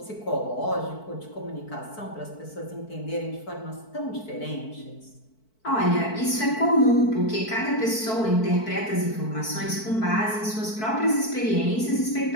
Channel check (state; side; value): late; right; 4.6 ms